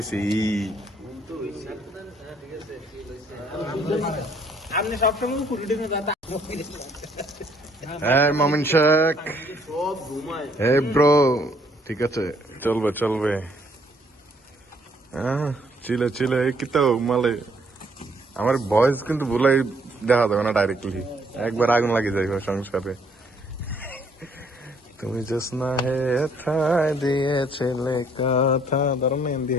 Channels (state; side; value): normal; both; correlation 0.65